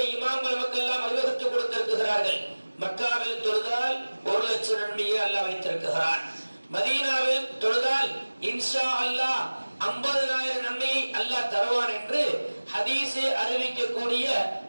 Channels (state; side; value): inverted; both; correlation -1.00